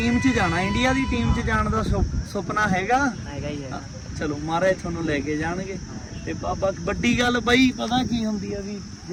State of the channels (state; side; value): identical; both; correlation 1.00